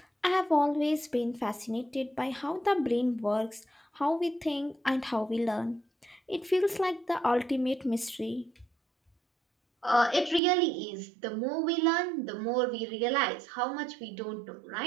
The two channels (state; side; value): drops out; left; at 10.4 s